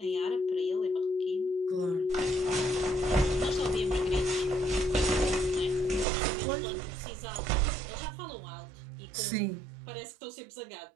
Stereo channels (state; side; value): drops out; left; at 6.1 s